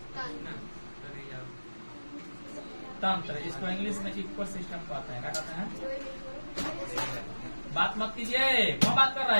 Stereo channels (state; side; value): inverted; both; correlation -1.00